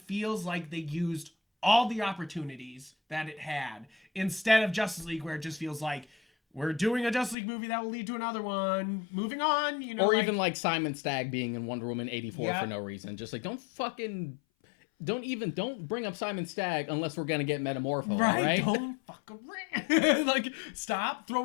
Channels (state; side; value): drops out; right; at 7.4 s